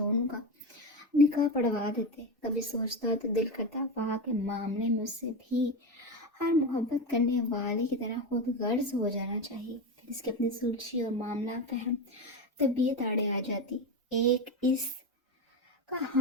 का निकाह पढ़वा देते। कभी सोचता तो दिल करता वहाँ के मामले में उससे भी हर मोहब्बत करने वाले की तरह खुद गर्ज हो जाना चाहिए। फिर इसकी अपनी सुलझी और मामला फहम तबीयत आड़े आ जाती। एक इस का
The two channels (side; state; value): both; normal; correlation 0.18